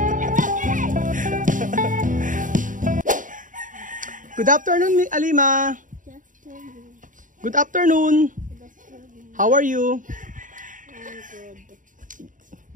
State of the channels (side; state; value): left; late; 0.38 ms